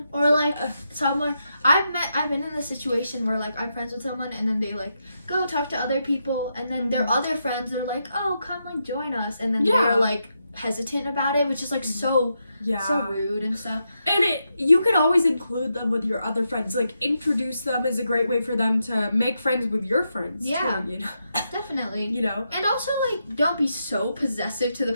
Or like someone I've been in a situation where like I'm friends with someone and then they like go talk to other people, and then their other friends are like, oh, come like join us, and then they're like hesitant about it, which is like so rude and stuff. And you could always include them with your other friends. Like, introduce them is a great way for them to make friends with your friends too, you know? Definitely. You know? And also, like, don't be so possessive to the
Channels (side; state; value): both; inverted; correlation -0.84